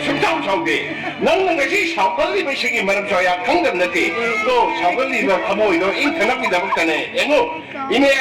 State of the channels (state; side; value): identical; both; correlation 1.00